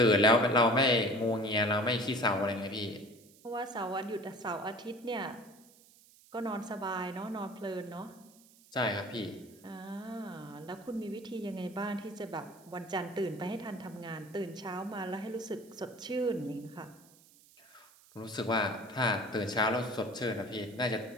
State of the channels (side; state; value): right; noise; hiss, 26 dB below the sound